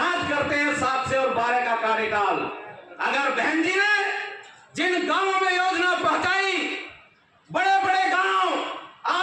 करते हैं 7 से और 12 का कार्यकाल। अगर बहन जी ने जिन गांवों में योजना पहुंचाई, बड़े बड़े गांव,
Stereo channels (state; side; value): identical; both; correlation 1.00